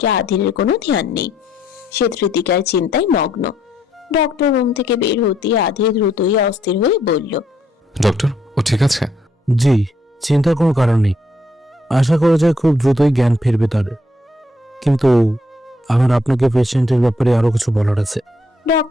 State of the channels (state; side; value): normal; both; correlation 0.71